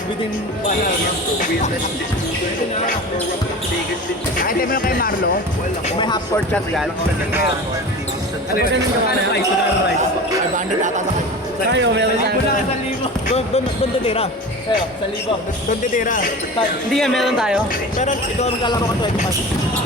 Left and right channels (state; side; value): normal; both; correlation 0.33